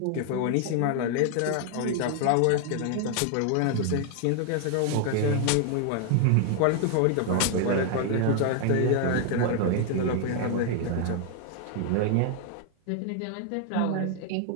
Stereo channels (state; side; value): different; both; correlation 0.00